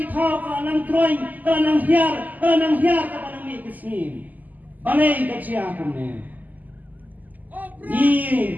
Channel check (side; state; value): left; late; 0.082 ms